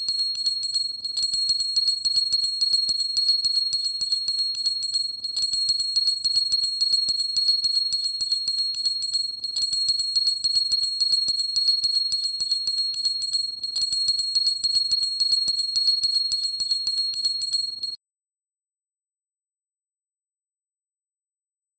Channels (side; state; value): left; late; 0.24 ms